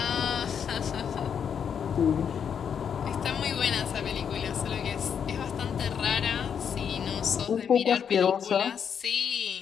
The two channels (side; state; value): right; quieter; 7.6 dB